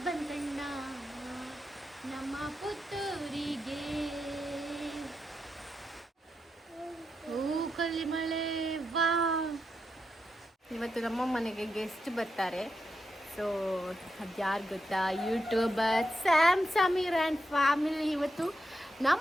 ಬಂದಣ್ಣ ನಮ್ಮ ಪುತ್ತೂರಿಗೆ, ಕಲ್ಲಿ ಮಳೆ. ವಾ, ಇವತ್ತು ನಮ್ಮ ಮನೆಗೆ ಗೆಸ್ಟ್ ಬರ್ತಾರೆ. ಸೊ ಅದ್ಯಾರು ಗೊತ್ತಾ? YouTuber Sam Sameer and family ಇವತ್ತು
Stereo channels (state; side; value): normal; both; correlation 0.85